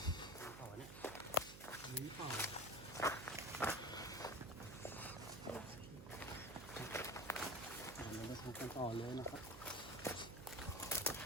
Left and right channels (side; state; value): right; noise; hum, 12 dB below the sound